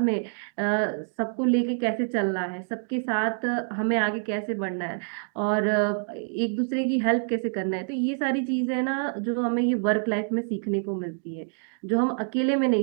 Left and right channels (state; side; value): silent; left; 60 dB below the other